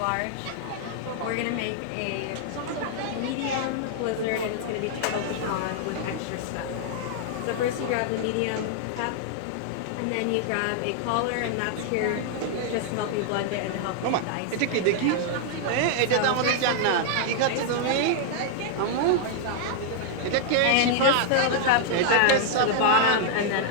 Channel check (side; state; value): both; different; correlation -0.01